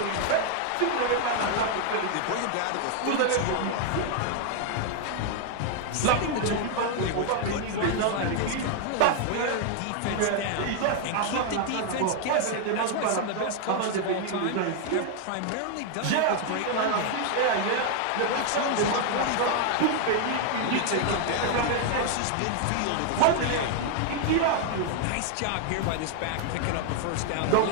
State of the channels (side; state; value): both; different; correlation 0.00